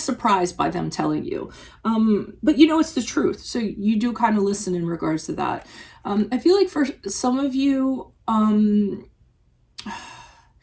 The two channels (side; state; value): both; identical; correlation 1.00